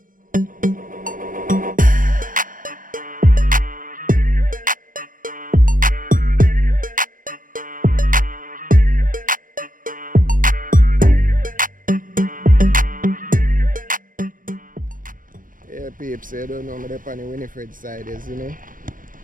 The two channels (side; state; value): left; late; 0.40 ms